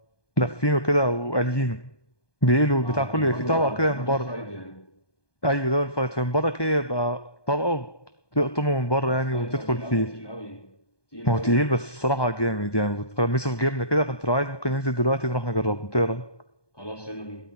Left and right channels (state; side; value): late; right; 1.2 ms